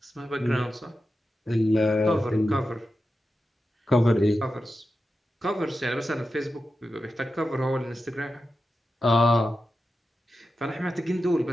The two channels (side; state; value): both; normal; correlation 0.91